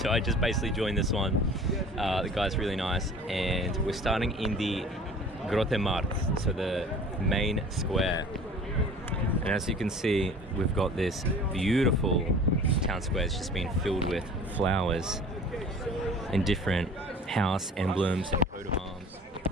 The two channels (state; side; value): normal; both; correlation 0.45